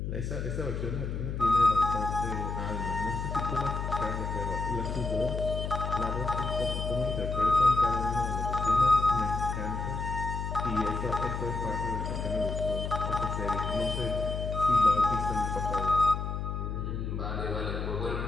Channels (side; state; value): left; noise; hum, 3 dB below the sound